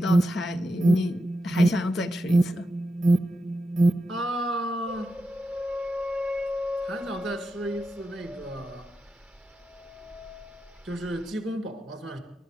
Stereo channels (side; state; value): both; normal; correlation 0.88